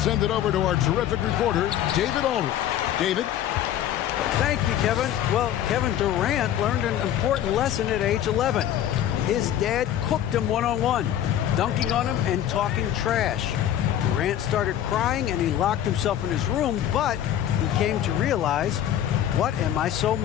send it over to our terrific reporter, David Aldridge. David? Thank you, Kevin. Well, Kevin Durant learned an important lesson at age 11. His dad cooked him one-on-one, dunking on him and talking trash. Durant started crying and he locked himself in his room, but he came to realize, what am I so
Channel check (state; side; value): quieter; right; 11.0 dB